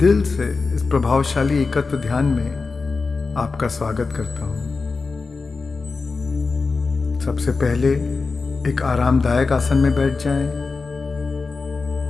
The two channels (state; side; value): quieter; right; 4.3 dB